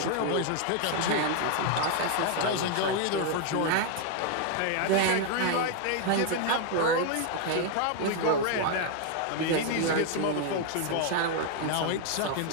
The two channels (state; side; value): different; both; correlation 0.00